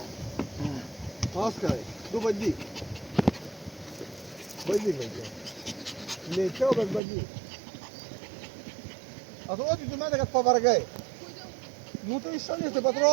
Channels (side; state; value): left; drops out; at 7.0 s